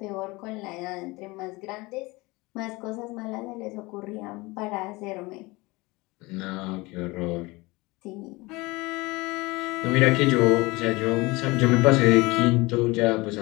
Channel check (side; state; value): right; quieter; 23.1 dB